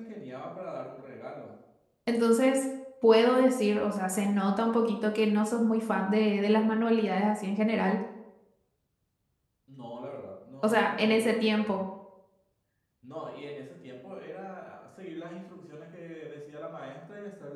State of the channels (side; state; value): both; identical; correlation 1.00